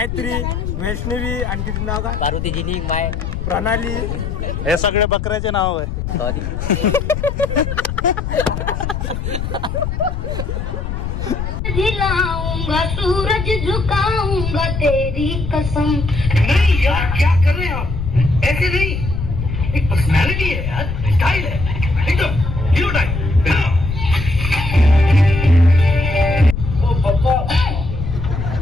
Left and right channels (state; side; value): noise; left; rumble, 4 dB below the sound